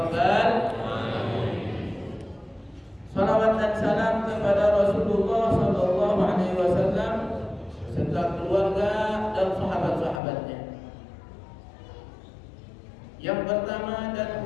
alamin. Salawat dan salam kepada Rasulullah sallallahu alaihi wasallam serta keluarga dan sahabat-sahabatnya. Yang pertama dan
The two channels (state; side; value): drops out; right; at 10.2 s